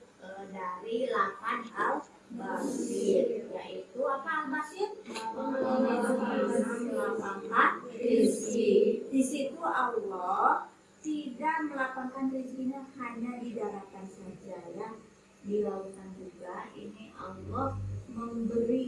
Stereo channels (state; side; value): identical; both; correlation 1.00